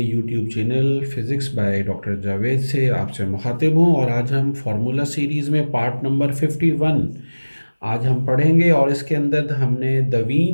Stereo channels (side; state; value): both; inverted; correlation -1.00